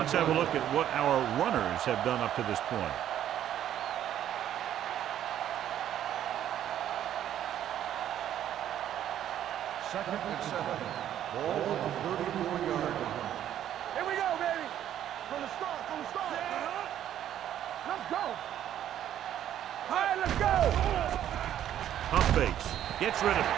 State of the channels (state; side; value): quieter; left; 11.1 dB